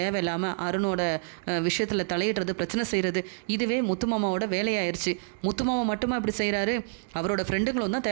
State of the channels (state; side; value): silent; left; digital silence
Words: அருணோட விஷயத்தில் தலையிடுறது, பிரச்சனை செய்கிறது, இதுவே முத்துமாமாவோட வேலையாயிருச்சு. முத்துமாமா மட்டுமா இப்படி செய்கிறாரு, அவரோட ஃப்ரெண்டுங்களும் தான்